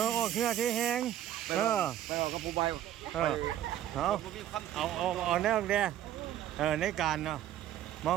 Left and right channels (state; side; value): quieter; left; 11.6 dB